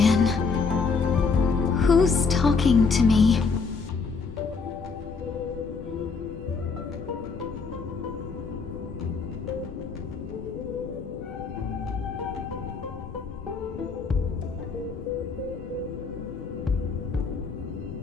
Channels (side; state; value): right; quieter; 4.9 dB